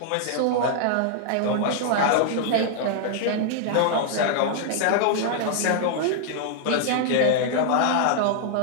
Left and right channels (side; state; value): both; different; correlation -0.01